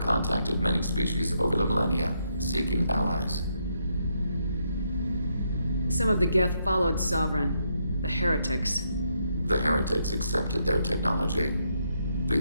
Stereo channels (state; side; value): inverted; both; correlation -0.77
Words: many species over the millennia, seeking allies. Some of the Geth followed Sovereign. The heretics. The heretics accepted their technology.